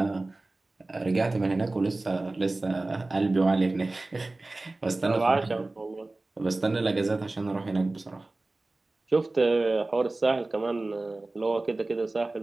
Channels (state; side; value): quieter; left; 3.0 dB